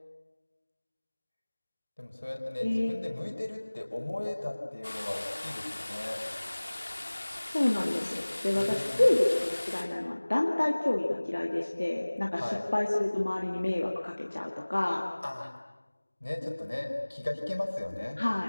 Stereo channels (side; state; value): both; inverted; correlation -1.00